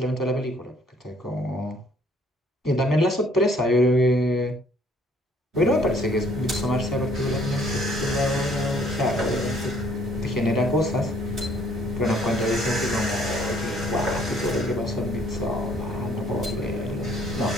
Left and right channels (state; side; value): normal; both; correlation 0.62